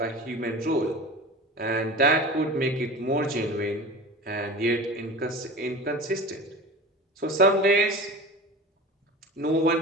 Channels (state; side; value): normal; both; correlation 0.33